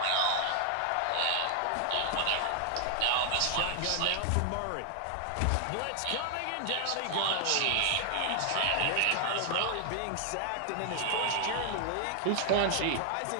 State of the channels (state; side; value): different; both; correlation 0.00